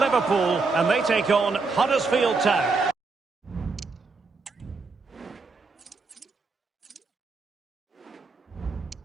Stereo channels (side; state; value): left; quieter; 4.1 dB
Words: and they take on Huddersfield Town.